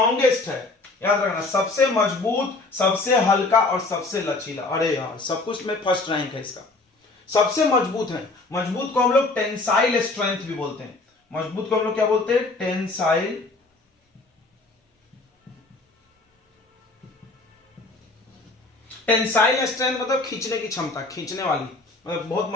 है। याद रखना, सबसे मजबूत, सबसे हल्का और सबसे लचीला। अरे यार, सब कुछ में फर्स्ट रैंक है इसका, सबसे मजबूत है। मजबूत को हम लोग टेंसाइल स्ट्रेंथ भी बोलते हैं। मजबूत को हम लोग क्या बोलते हैं, टेंसाइल टेंसाइल स्ट्रेंथ मतलब खींचने की क्षमता, खींचने वाली, मतलब बहुत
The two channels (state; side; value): quieter; right; 3.3 dB